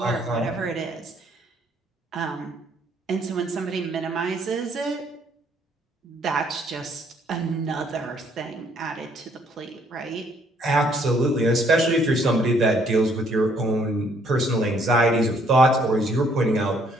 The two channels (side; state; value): both; normal; correlation 0.65